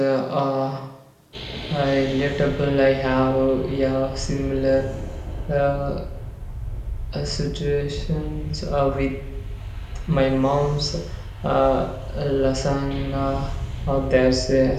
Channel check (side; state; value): both; identical; correlation 1.00